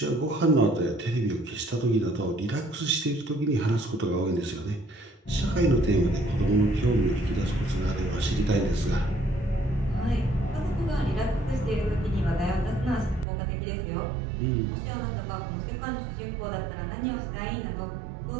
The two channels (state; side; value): drops out; left; at 13.2 s